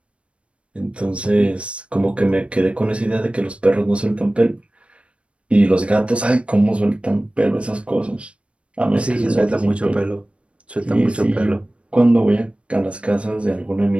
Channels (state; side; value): late; left; 0.060 ms